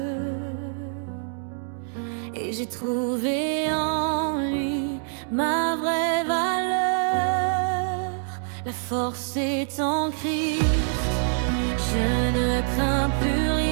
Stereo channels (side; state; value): left; silent; digital silence